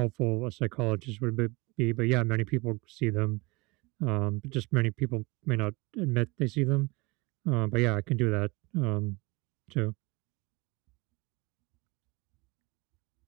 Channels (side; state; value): left; quieter; 25.3 dB